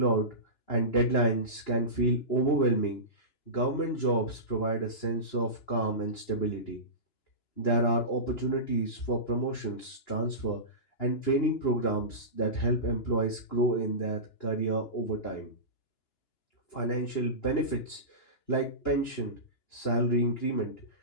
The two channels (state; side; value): late; right; 2.9 ms